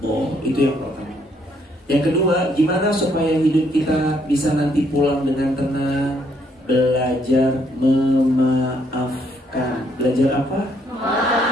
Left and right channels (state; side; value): normal; both; correlation 0.70